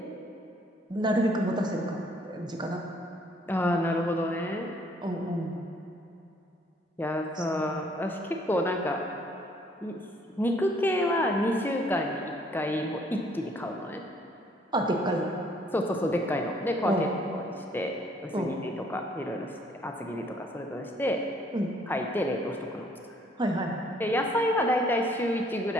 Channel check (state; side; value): normal; both; correlation 0.63